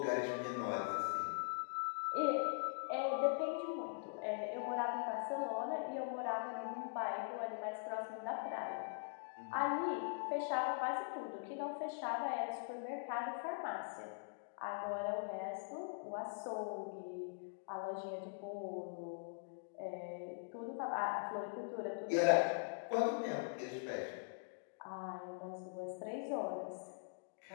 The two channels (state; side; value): silent; right; digital silence